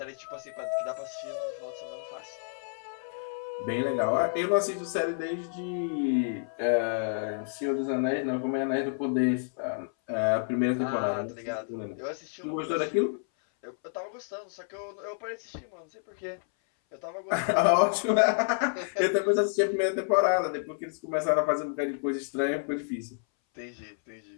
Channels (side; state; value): right; silent; 58 dB below the other